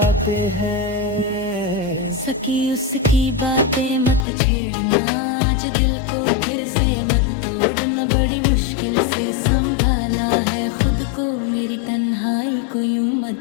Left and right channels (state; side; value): drops out; right; at 4.2 s